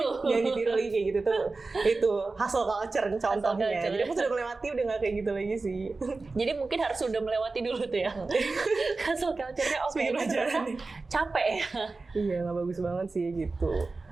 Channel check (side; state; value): left; quieter; 3.7 dB